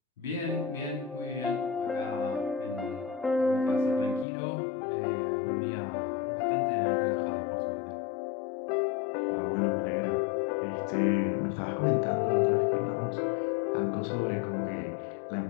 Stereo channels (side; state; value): right; drops out; at 4.2 s